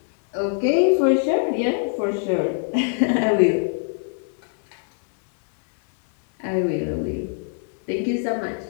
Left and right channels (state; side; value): silent; right; 63 dB below the other